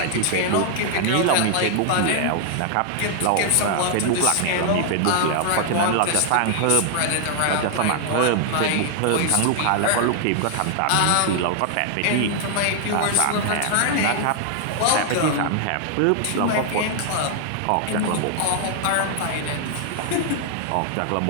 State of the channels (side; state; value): both; different; correlation 0.00